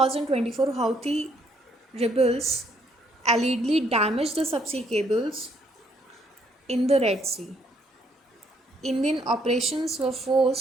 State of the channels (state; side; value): normal; both; correlation 0.69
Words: Houthi rebels allegedly damaged the subsea cables in the Red Sea. Indian operations were